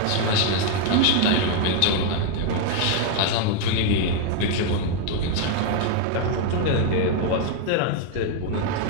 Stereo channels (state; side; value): different; both; correlation 0.00